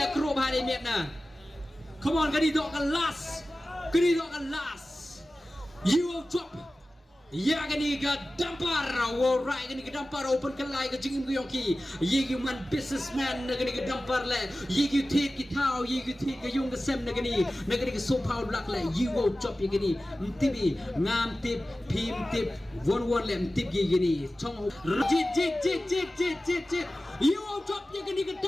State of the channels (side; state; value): both; normal; correlation 0.95